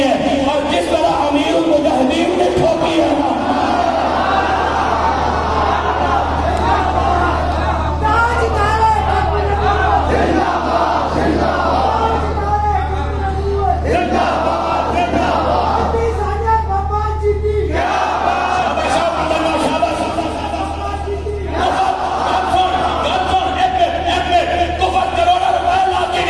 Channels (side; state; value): both; identical; correlation 1.00